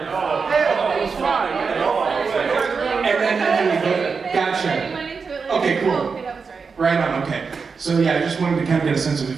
was fine. And then gotcha. Okay, cool. Okay, that was right. Right on. Okay. So yeah, I just wanted to kind of get a sense of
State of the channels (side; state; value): left; quieter; 5.2 dB